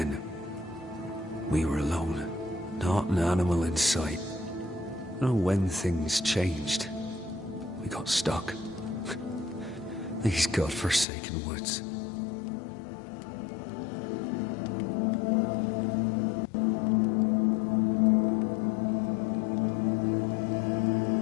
We were alone, not an animal in sight. I don't know when things changed. We got stuck. These godforsaken woods.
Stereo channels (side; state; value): right; drops out; at 11.1 s